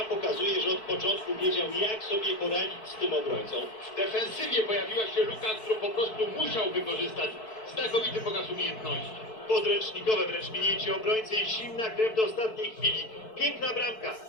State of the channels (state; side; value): late; right; 4.6 ms